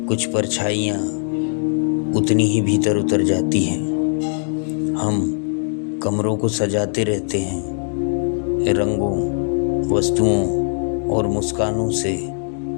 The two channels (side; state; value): right; silent; 65 dB below the other